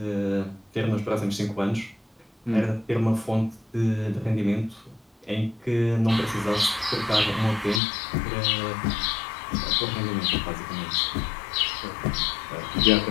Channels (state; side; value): drops out; right; at 7.8 s